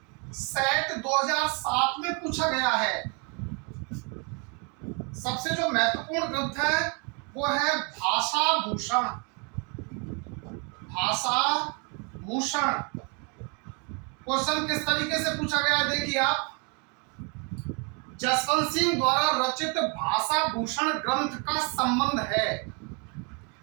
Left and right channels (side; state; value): left; quieter; 34.7 dB